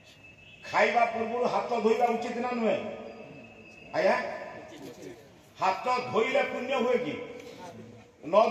खाइबा पूर्व हाथ धोइबा उचित ना नुहे आया हाथ धोइले पुण्य हुए कि न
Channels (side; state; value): both; identical; correlation 1.00